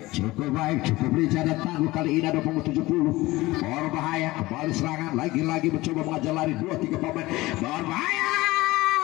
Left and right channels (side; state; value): right; quieter; 19.5 dB